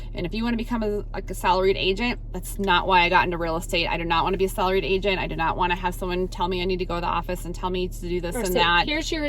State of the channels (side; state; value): both; identical; correlation 1.00